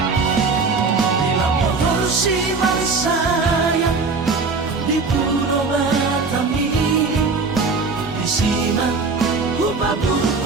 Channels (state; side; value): quieter; left; 4.3 dB